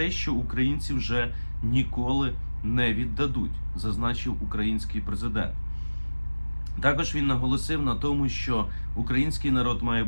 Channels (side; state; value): both; inverted; correlation -1.00